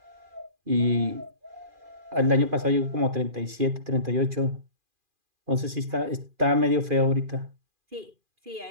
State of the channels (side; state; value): left; late; 2.4 ms